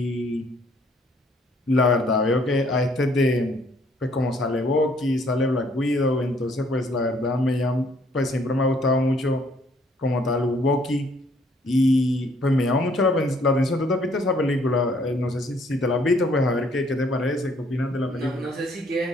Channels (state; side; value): normal; both; correlation 0.64